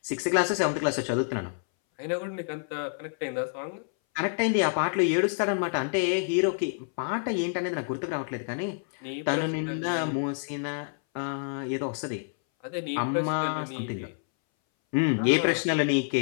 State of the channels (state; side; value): silent; right; 59 dB below the other